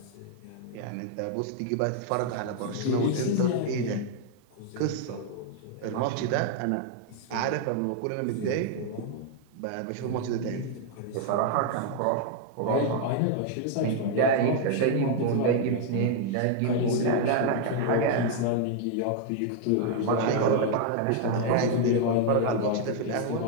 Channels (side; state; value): both; different; correlation 0.00